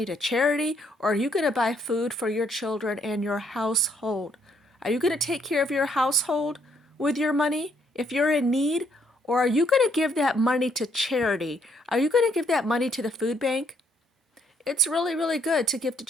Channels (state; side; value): normal; both; correlation 0.69